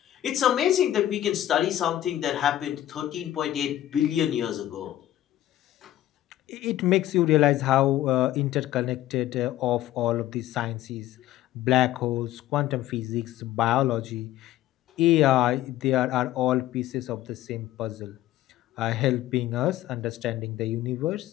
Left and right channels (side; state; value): right; quieter; 13.6 dB